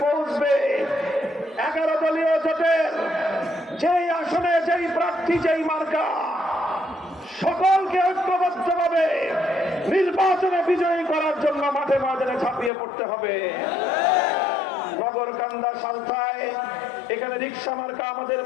পৌঁছবে, 11 দলীয় জোটের যেই আসনে যেই প্রার্থী যেই মার্কা, সকলকে ঐক্যবদ্ধভাবে নির্বাচনে বিজয়ী করার জন্য মাঠে ময়দানে ঝাঁপিয়ে পড়তে হবে। নগরকান্দা, সালথায় এখানে রিক্সা মার্কা আমাদের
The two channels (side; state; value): right; drops out; at 12.7 s